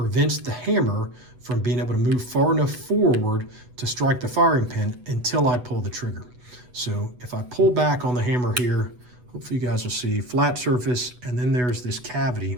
the hammer from being able to move far enough forward to strike the firing pin until I pull the trigger. So if I pull back on the hammer here, hopefully you guys will see flat surface, and then there's this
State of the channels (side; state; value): left; late; 8.0 ms